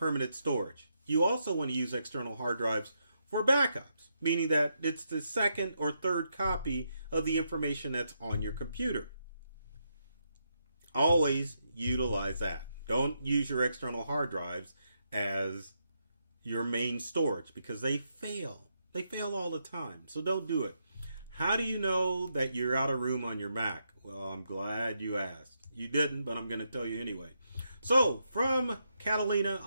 storage. You also want to use external hard drives for backups, meaning that it's the second or third copy of the information that's on your computer. Always utilize that. Don't use your external hard drives as your main storage because they fail. They fail all the time. So don't do it. How do you know that you're out of room on your Mac? Well, I'm glad you asked. You didn't, but I'm going to tell you anyway. So from Catalina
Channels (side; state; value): both; inverted; correlation -0.81